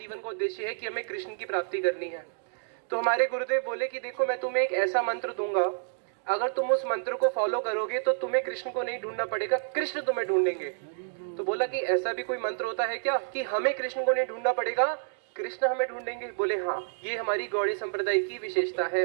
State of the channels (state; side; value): silent; left; digital silence